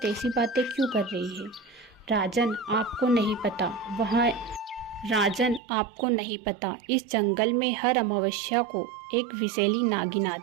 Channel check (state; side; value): drops out; left; at 5.6 s